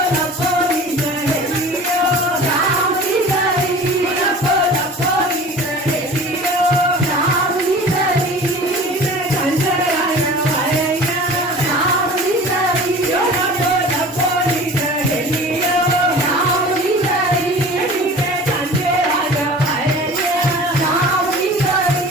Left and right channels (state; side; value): normal; both; correlation 0.41